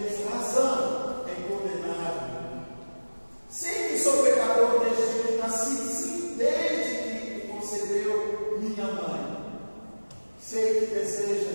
razão em condenar-me. Sei que sou pecador desde que nasci, sim, desde que concebeu minha mãe. Sei que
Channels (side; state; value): both; inverted; correlation -1.00